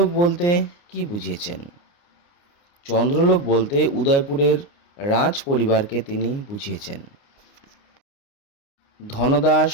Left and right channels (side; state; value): right; late; 29 ms